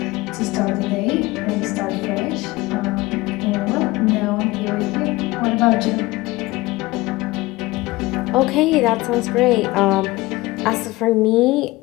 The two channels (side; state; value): right; quieter; 20.4 dB